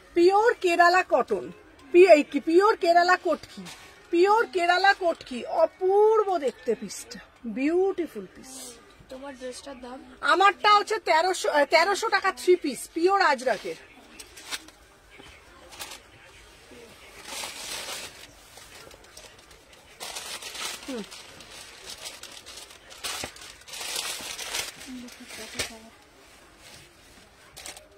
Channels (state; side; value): identical; both; correlation 1.00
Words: Pure Kerala cotton, pure Kerala Kotki, pure Kerala Kotki, অপূর্ব দেখতে পিসটা, বিউটিফুল পিস। তোমার ড্রেসটার দাম? আমারটা হচ্ছে 1300 টাকা 3 পিস, পিওর আজরাকের।